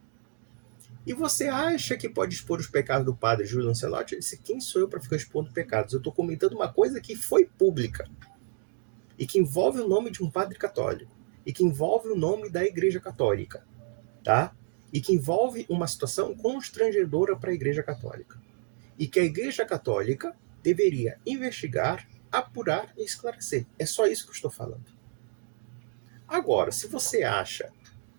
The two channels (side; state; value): left; silent; 58 dB below the other